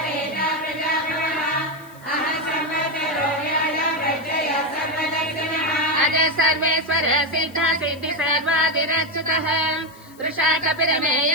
अजय सर्वेश्वर सिद्ध सिद्धि सर्वादिरच्युतः वृषा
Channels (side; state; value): left; noise; hiss, 25 dB below the sound